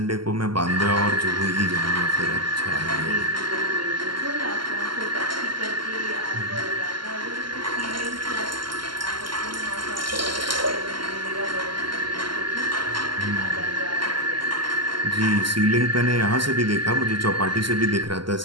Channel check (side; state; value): left; late; 0.72 ms